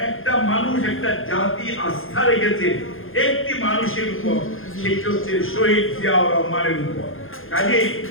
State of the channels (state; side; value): late; right; 0.60 ms